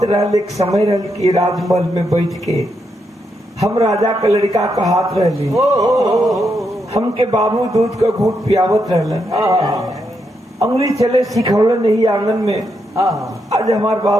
रहल, एक समय रहल कि राजमहल में बैठ के हम राजा का लड़का का हाथ रहली, हमके बाबू दूध का घूट पियावत रहलन, अंगुली चले सिखौलन नहीं आंगन में। आज हमार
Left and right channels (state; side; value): normal; both; correlation 0.81